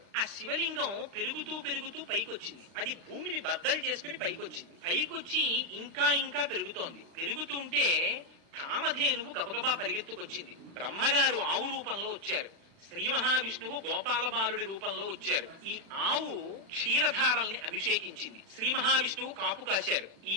ఆ శివలింగం పెరుగుతూ పెరుగుతూ పైకొచ్చింది. అది భూమిని బద్దలు చేసుకుని పైకొచ్చింది. పైకొచ్చి ఇంకా ఇంకా పెరుగుతోంది. పెరుగుతుంటే కామధేనువు గబగబా పరిగెత్తుకొచ్చింది. బ్రహ్మగారు ఆవు రూపంలో వచ్చారు. శ్రీ మహావిష్ణువు గోపాల బాలుడి రూపంలో వచ్చారు. ఈ ఆవు క్షీరధారల్ని అభిషేకించింది. శ్రీ మహావిష్ణువు కాపు కాశారు. ఈ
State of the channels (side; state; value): left; late; 36 ms